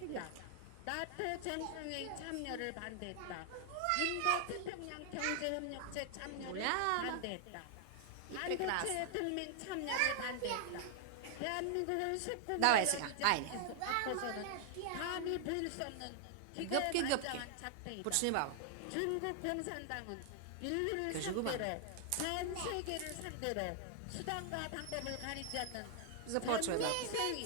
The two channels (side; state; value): both; different; correlation 0.00